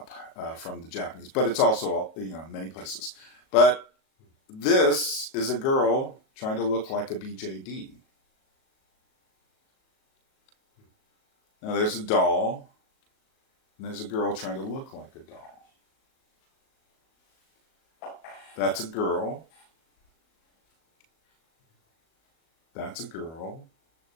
from the Japanese, but it's also, many places. But this is a girl trying to look like a BJD. Now there's a doll, and there's a girl trying to look like a doll. That's a girl. That's a girl.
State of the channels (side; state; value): right; late; 37 ms